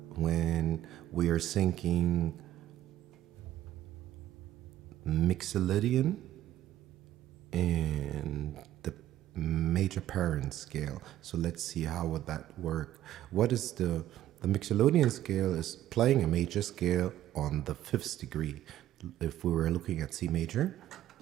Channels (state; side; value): quieter; left; 13.1 dB